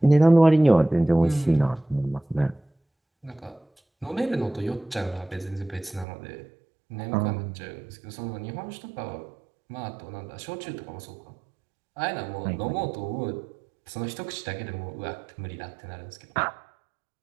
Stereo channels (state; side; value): drops out; left; at 6.1 s